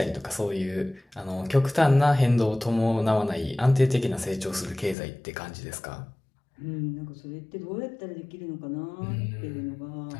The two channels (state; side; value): drops out; right; at 5.0 s